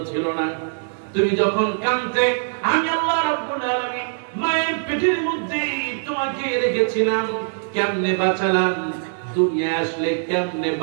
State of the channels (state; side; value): silent; left; 64 dB below the other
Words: ছিল না। তুমি যখন কাঁদতে, আমি আল্লাহ রাব্বুল আলামিন মায়ের পেটের মধ্যে তোমাকে রেখেছিলাম, কেমনে বাঁচালাম, দুনিয়ায় আসলে কেমনে